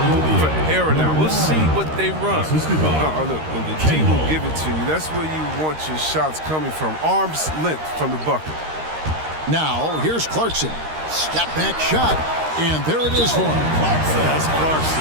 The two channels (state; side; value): late; left; 13 ms